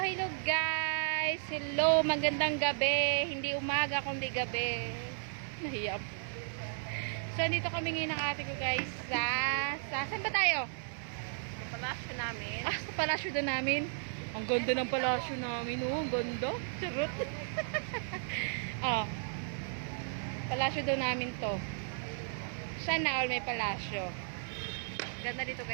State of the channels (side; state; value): left; silent; digital silence